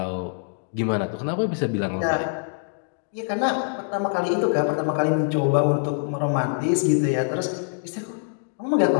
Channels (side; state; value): right; silent; digital silence